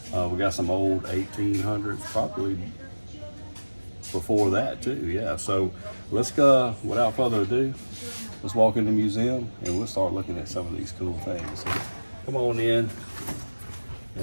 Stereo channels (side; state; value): both; inverted; correlation -1.00